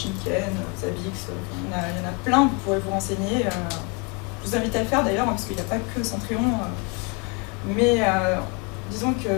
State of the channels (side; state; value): right; quieter; 31.0 dB